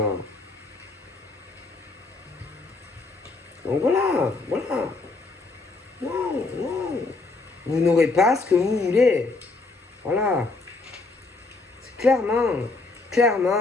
Donc voilà. Non. Vous n'aurez pas ce que vous voulez. Voilà. C'est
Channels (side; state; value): right; quieter; 3.5 dB